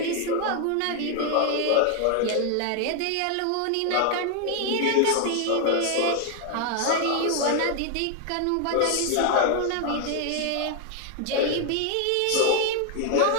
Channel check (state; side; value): different; both; correlation 0.00